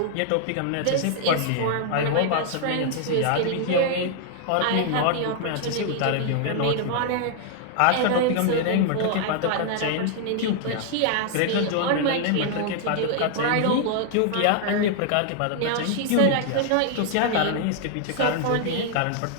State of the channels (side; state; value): both; different; correlation -0.01